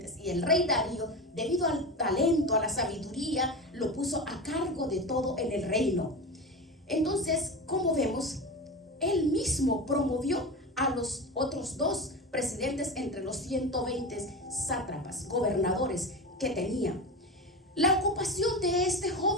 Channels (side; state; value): both; normal; correlation 0.24